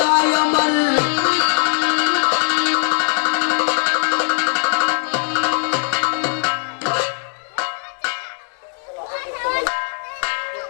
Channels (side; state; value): right; silent; 64 dB below the other